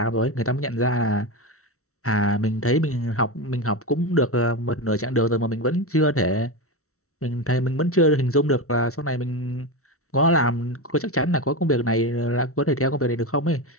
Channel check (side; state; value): right; late; 0.64 ms